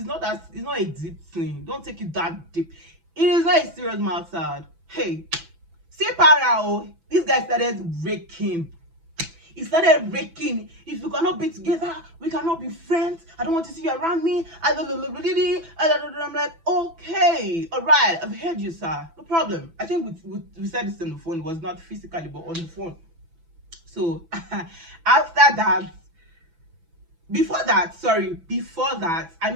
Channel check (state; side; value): late; left; 6.0 ms